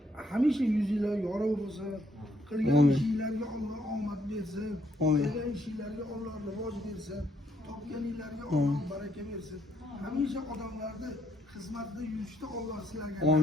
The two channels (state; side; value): normal; both; correlation 0.71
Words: Hamisha yuzinglar yorug' bo'lsin. Qilgan ishinglarga Alloh omad bersin. Qilgan ishinglarga Alloh rivoj bersin. Topganinglarga Alloh baraka bersin. Hamisha odamlarni xizmatda yurishda Alloh sizlarga